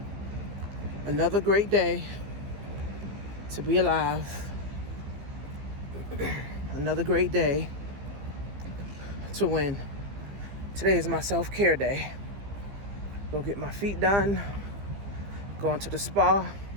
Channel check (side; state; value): left; late; 15 ms